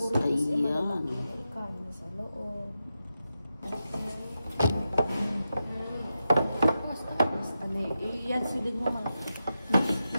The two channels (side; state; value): both; inverted; correlation -0.89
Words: Ayan. Kain sa loob. Ano yan, silid mo mga.